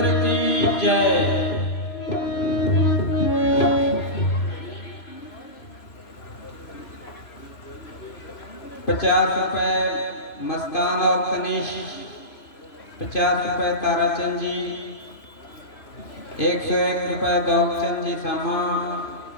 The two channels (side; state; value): right; late; 3.0 ms